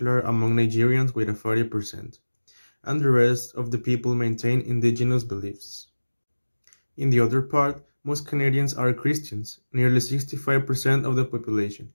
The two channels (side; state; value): both; inverted; correlation -1.00